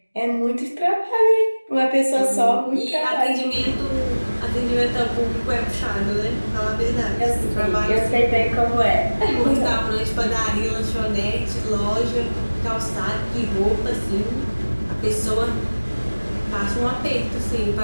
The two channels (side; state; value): both; inverted; correlation -1.00